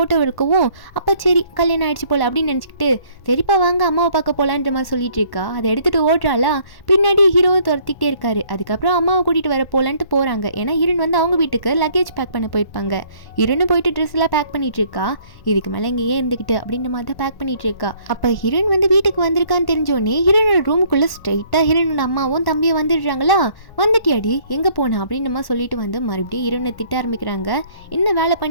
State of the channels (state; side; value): late; right; 1.1 ms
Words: இருக்கவும், அப்போ சரி கல்யாணம் ஆயிடுச்சு போல் அப்படின்னு நினச்சிக்கிட்டு சரிப்பா வாங்க அம்மாவை பார்க்க போகலான்ற மாதிரி சொல்லிட்டு இருக்கா. அதை எடுத்துகிட்டு ஓடுறாளா. பின்னாடி ஹீரோவும் துரத்திக்கிட்டே இருக்காரு. அதுக்கப்புறம் அம்மாவை கூட்டிகிட்டு வர போகலான்ட்டு போகிறாங்க. ஏன்னா ஹீரோன் வந்து அவங்க வீட்டுக்கு லக்கேஜ் பேக் பண்ண போயிருப்பாங்க. ஹீரோனும் போயிட்டு ட்ரெஸ் எல்லாம் பேக் பண்ணிட்டு இருக்கா. இதுக்கு மேலே இங்கேயே இருந்துக்கிட்டு அப்படின்ற மாதிரி தான் பேக் பண்ணிட்டு இருக்கா. அப்போ ஹீரோன் வந்து வீட்டுக்கு வந்திருக்கான்னு தெரிஞ்சோடனே ஹீரோனோட ரூமுக்குள்ளே ஸ்ட்ரைட்டாக ஹீரோனோட அம்மாவும் தம்பியும் வந்துடுறாங்களா. வந்துட்டியாடி எங்கே போனா அப்படின்ற மாதிரி சொல்லிட்டு வந்து மறுபடியும் ஹீரோனை திட்ட ஆரம்பிக்கிறாங்க. என்ன வேலை